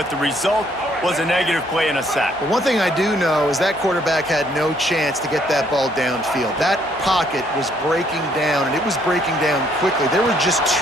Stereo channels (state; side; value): normal; both; correlation 0.67